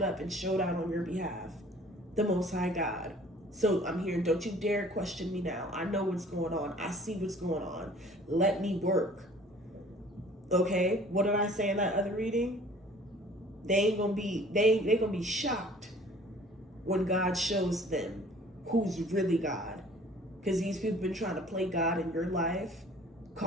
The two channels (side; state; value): both; normal; correlation 0.51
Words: up and showed out on your behalf? The Most High God. So I'm here. Don't you dare question me now. I know what's going on. I see what's going on. Let me work. Okay? What did I say in that other reading? They gonna be shocked when God shows them who's really God. Because these people been trying to play God in your life,